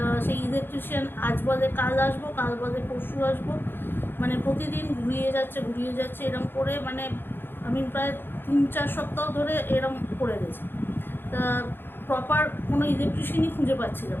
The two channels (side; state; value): right; late; 0.10 ms